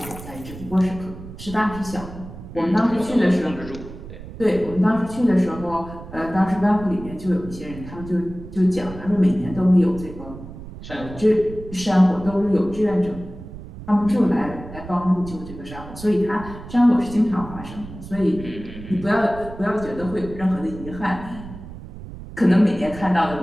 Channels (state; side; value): noise; right; rumble, 13 dB below the sound